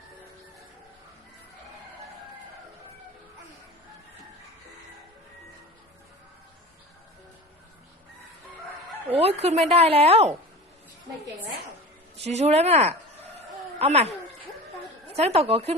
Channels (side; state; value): both; normal; correlation 0.34